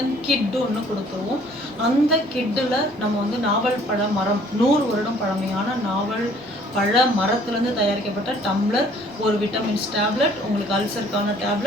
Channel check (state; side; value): normal; both; correlation 0.57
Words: கிட் ஒன்று கொடுத்துருவோம். அந்த கிட்டில் நம்ம வந்து நாவல் பழ மரம் 100 வருடம் பழமையான நாவல் பழ மரத்துலேருந்து தயாரிக்கப்பட்ட டம்ளர், ஒரு விட்டமின்ஸ் டேப்லெட், உங்களுக்கு அல்சருக்கான